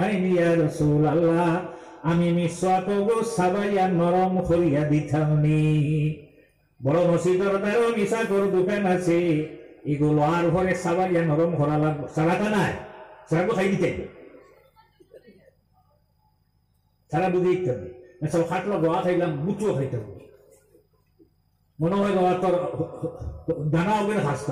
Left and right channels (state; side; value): identical; both; correlation 1.00